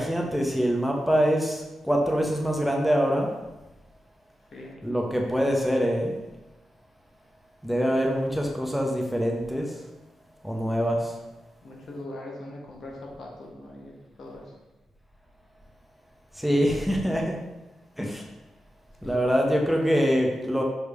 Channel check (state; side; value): normal; both; correlation 0.92